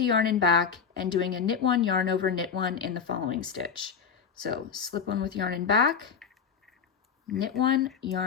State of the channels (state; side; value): quieter; right; 6.7 dB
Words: yarn in back and doing a knit one, yarn over, knit one in the following stitch. So slip one with yarn in back, knit one,